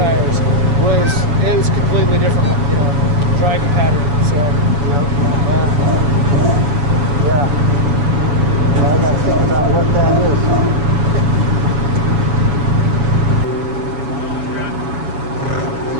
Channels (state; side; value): late; left; 7.0 ms